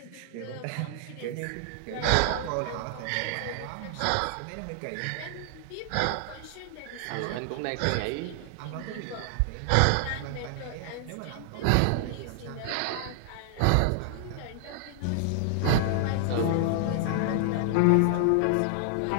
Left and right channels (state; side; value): different; both; correlation 0.00